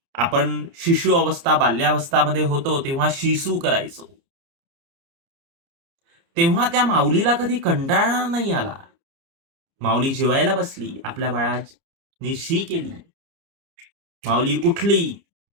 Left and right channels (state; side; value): late; left; 30 ms